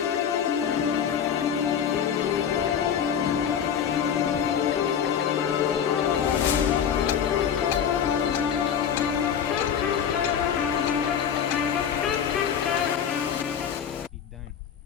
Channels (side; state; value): right; quieter; 8.2 dB